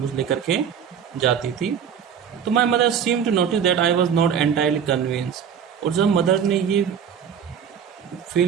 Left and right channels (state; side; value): quieter; left; 7.8 dB